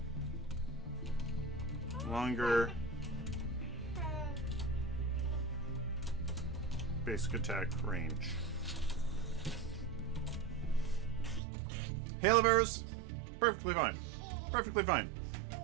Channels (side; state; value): left; drops out; at 11.4 s